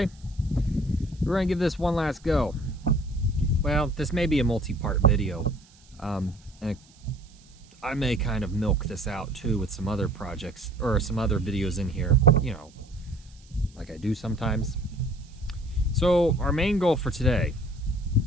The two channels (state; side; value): noise; right; hiss, 28 dB below the sound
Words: we're gonna give this one last go. Well, this may be a multi-part video, and I may kind of milk this out too with some other projects or some other videos in here, you know, like I do sometimes. So our main goal for today